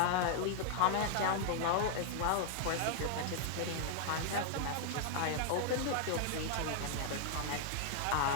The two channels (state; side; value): different; both; correlation 0.00